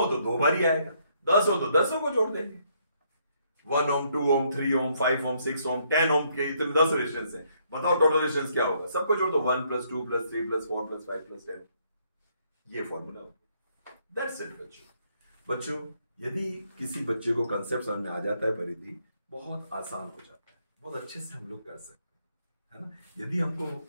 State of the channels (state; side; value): inverted; both; correlation -0.71